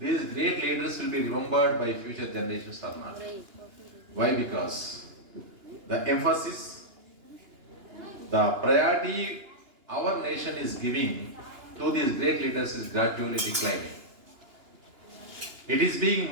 great leaders will be remembered by future generations or not. Why? Because the emphasis, the priority our nation is giving to these great leaders is gradually declining. It is being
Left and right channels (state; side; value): late; left; 2.9 ms